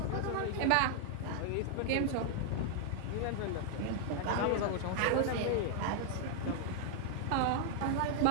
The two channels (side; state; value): both; different; correlation -0.01